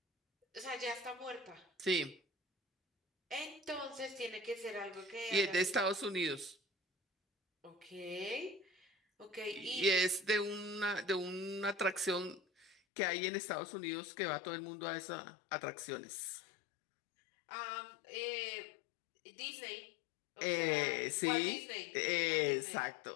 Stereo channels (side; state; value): right; drops out; at 12.8 s